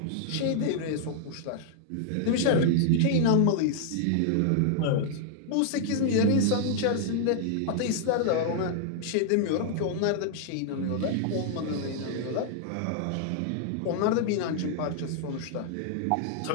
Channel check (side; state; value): both; different; correlation -0.01